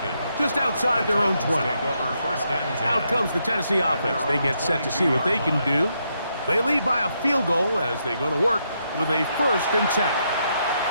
just outside their own 20. Out comes the Tennessee offense. They get set to see what they can do. They lead by a field goal as they go to work with a 1st and 10.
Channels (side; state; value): both; inverted; correlation -0.79